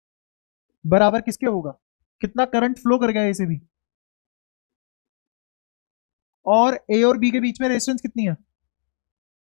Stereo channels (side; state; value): right; silent; 63 dB below the other